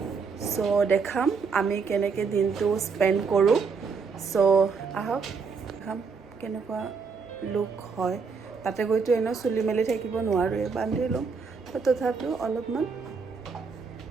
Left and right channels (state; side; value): quieter; left; 5.2 dB